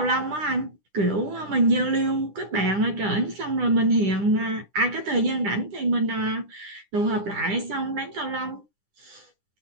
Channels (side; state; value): left; late; 9.9 ms